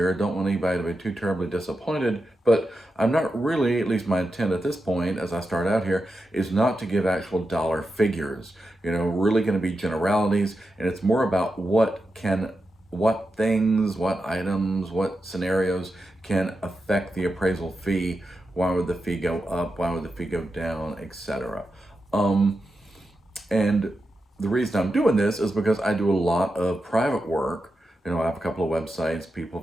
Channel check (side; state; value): both; normal; correlation 0.89